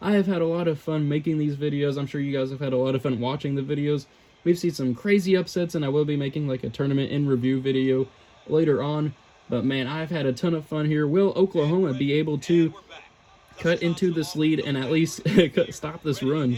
I have had a lot of fun making these videos. I'm sure you guys have had a lot of fun watching the videos. We've seen some crazy upsets, and I will be making like a tournament in review video later on. But man, I've had a ton of fun here. Will Oklahoma be able to cut into this lead and at least stop this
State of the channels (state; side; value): identical; both; correlation 1.00